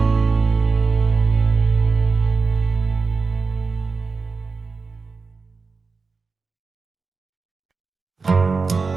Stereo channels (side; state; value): left; quieter; 4.5 dB